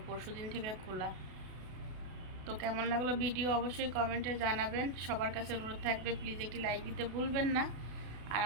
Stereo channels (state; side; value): late; left; 32 ms